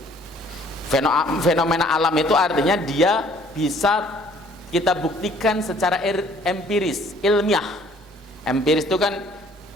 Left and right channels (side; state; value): both; normal; correlation 0.58